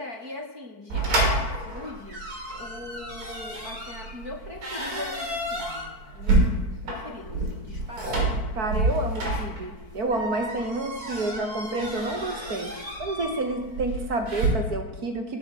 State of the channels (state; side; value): late; left; 4.5 ms